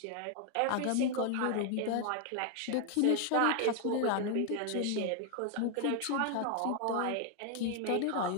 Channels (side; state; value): both; different; correlation 0.00